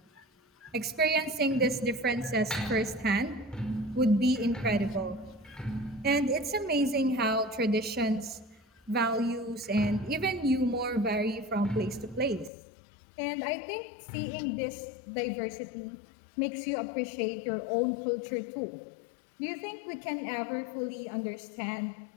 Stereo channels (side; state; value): right; drops out; at 12.5 s